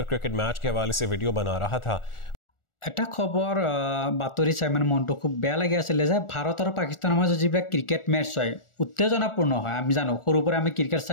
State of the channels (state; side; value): late; right; 1.4 ms